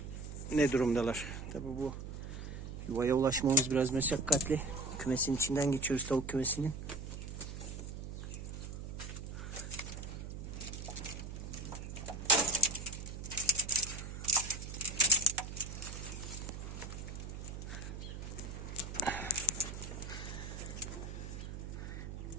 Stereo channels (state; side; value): noise; right; hum, 8 dB below the sound